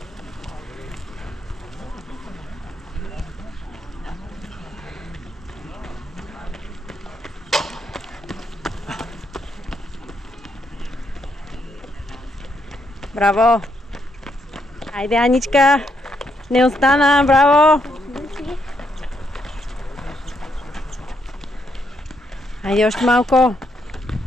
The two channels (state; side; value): normal; both; correlation 0.77